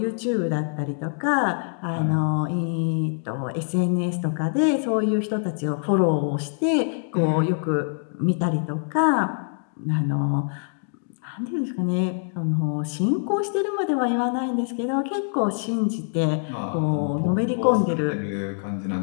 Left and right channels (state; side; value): silent; right; digital silence